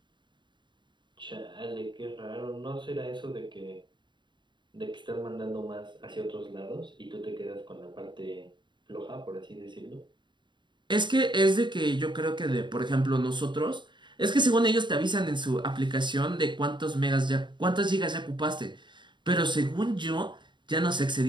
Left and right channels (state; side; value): late; left; 0.22 ms